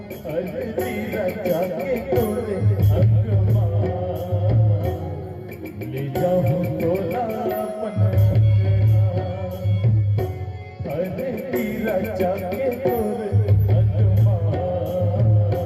हल्दी रचा के तोरे अंगमा, ले जाऊँ तोला अपन हल्दी रचा के तोरे अंगमा,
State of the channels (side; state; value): both; identical; correlation 1.00